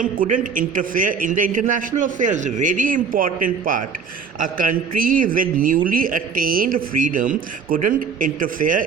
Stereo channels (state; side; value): quieter; left; 5.8 dB